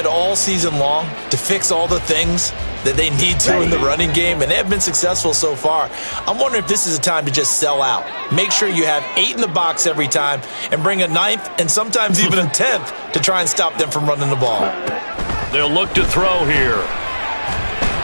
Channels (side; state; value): both; inverted; correlation -1.00